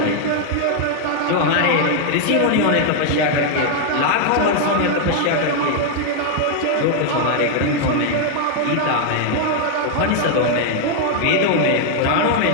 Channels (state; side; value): different; both; correlation 0.00